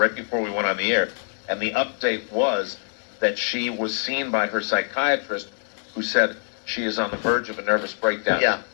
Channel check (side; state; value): right; silent; 62 dB below the other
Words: before we went on the air, and the update was that she was seen by her psychiatrist, who said she is on the verge of a nervous breakdown. Yeah.